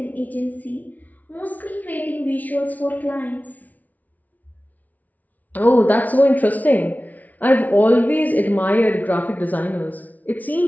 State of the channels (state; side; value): late; right; 0.075 ms